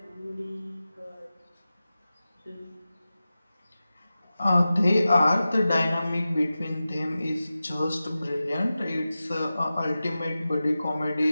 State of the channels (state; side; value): inverted; both; correlation -0.95